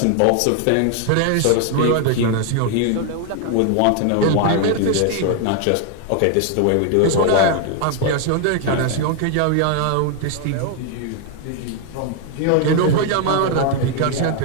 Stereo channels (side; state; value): both; different; correlation 0.00